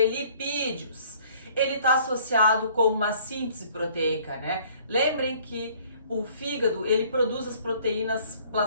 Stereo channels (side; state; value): both; inverted; correlation -0.57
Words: lipídios. Ele está associado com uma síntese proteica, né? Lembrem que o fígado, ele produz as proteínas